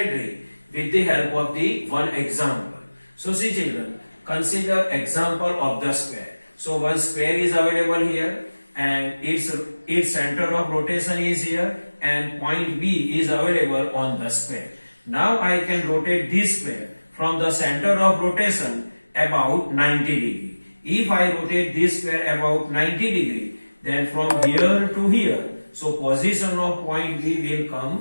with the help of the one example. So see children, consider example of the square. So one square is available here and its center of rotation is here and point B is available on the square. Now I can rotate this square from the center of rotation about 90 degree. If I rotate this square about 90 degree, then from here to here, so position of point B will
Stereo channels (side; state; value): both; inverted; correlation -1.00